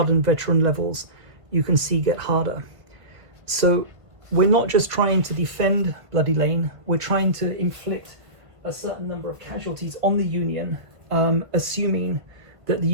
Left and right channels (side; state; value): left; late; 1.7 ms